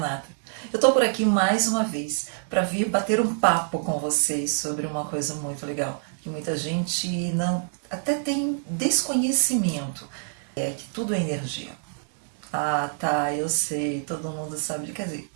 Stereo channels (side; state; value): left; silent; digital silence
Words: Eu tô por aqui mais uma vez para vir bater um papo com vocês sobre uma coisa muito legal, que muita gente não até tem desconhecimento, é que tudo é energia. Ah, tá, eu sei, todo mundo sabe, quer dizer,